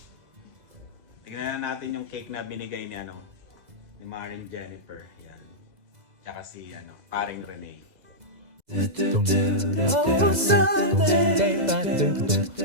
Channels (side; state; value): left; late; 2.0 ms